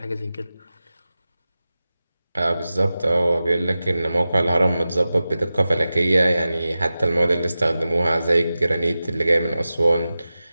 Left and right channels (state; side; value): inverted; both; correlation -0.94